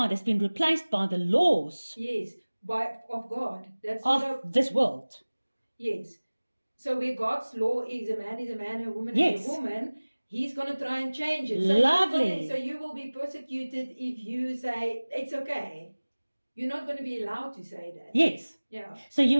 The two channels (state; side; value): inverted; both; correlation -1.00